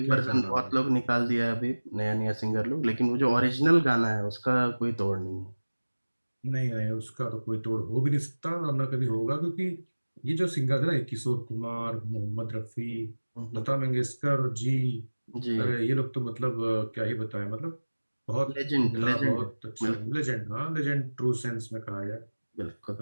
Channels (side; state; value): both; inverted; correlation -1.00